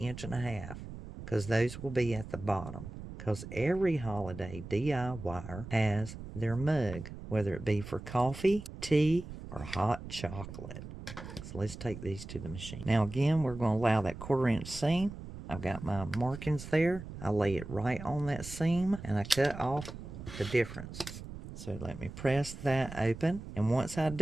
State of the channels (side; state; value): right; noise; rumble, 11 dB below the sound